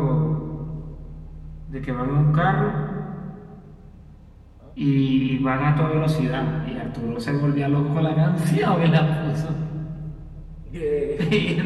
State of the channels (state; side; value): identical; both; correlation 1.00